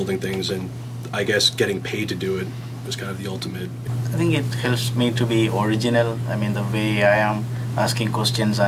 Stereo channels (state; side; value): identical; both; correlation 1.00